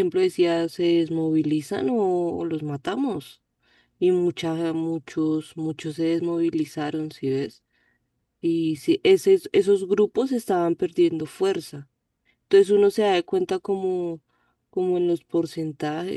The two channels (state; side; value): identical; both; correlation 1.00